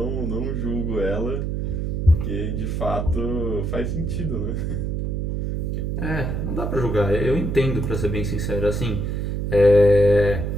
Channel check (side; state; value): right; noise; hum, 1 dB below the sound